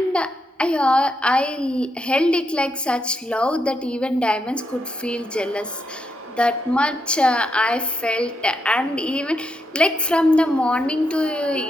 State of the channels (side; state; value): both; normal; correlation 0.81